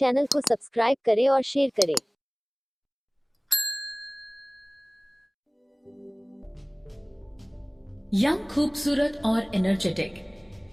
को सब्सक्राइब करें और शेयर करें। यंग, खूबसूरत और एनर्जेटिक।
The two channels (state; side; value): identical; both; correlation 1.00